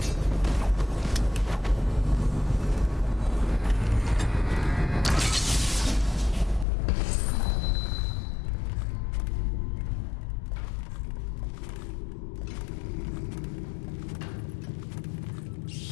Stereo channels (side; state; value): right; drops out; at 6.7 s